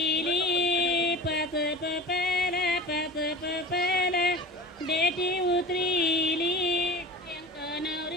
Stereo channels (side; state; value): both; normal; correlation 0.35